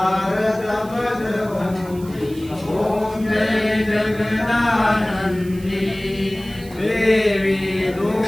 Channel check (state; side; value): noise; right; hiss, 21 dB below the sound